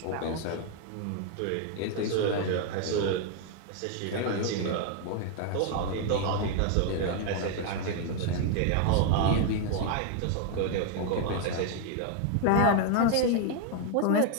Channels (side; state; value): both; different; correlation 0.00